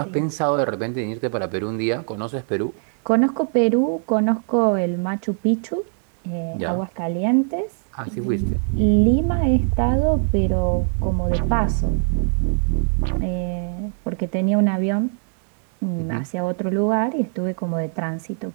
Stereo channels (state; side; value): silent; left; 58 dB below the other